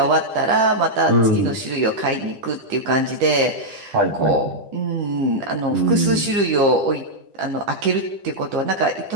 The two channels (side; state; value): left; late; 9.9 ms